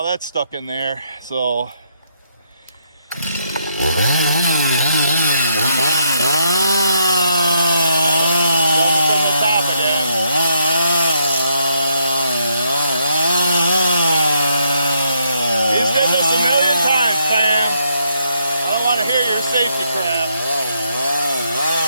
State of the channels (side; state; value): both; inverted; correlation -0.74